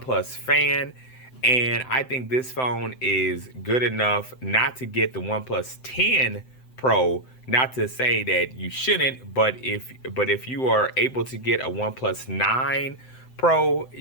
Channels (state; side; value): late; right; 7.8 ms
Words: fan, and I think this phone is good enough not to get the OnePlus 10 Pro. Not to say that you shouldn't, but if you are able to get a OnePlus 9 Pro,